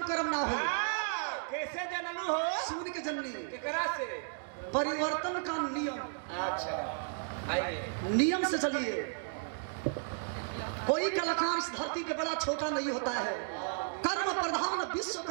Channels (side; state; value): left; silent; digital silence